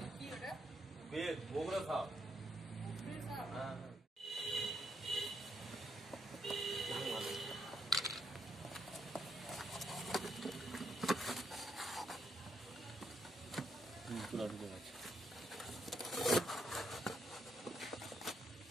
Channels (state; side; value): normal; both; correlation 0.76